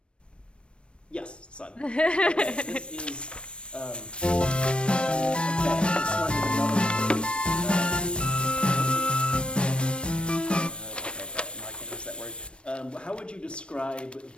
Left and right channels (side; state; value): right; late; 0.058 ms